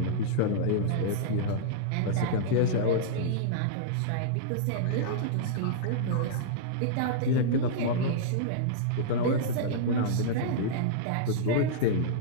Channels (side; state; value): both; different; correlation -0.03